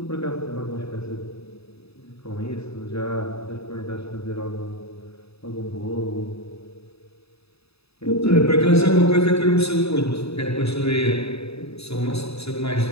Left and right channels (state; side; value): late; right; 0.78 ms